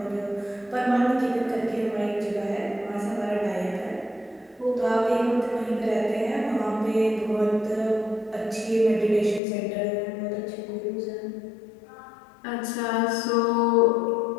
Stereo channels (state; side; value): drops out; right; at 9.4 s